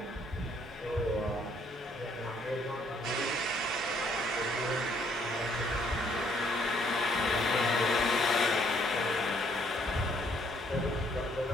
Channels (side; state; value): both; normal; correlation 0.67